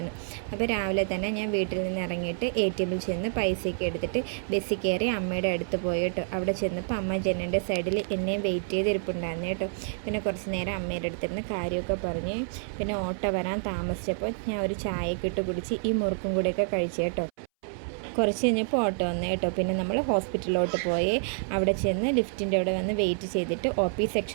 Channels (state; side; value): silent; left; 59 dB below the other